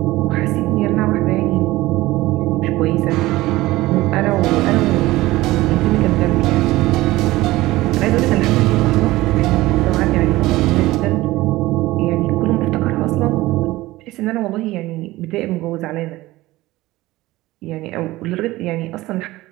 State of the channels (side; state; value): left; quieter; 18.2 dB